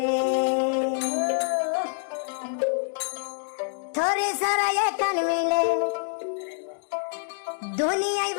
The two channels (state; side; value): silent; right; digital silence